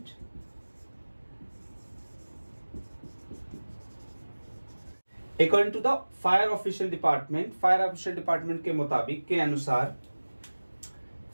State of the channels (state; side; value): inverted; both; correlation -1.00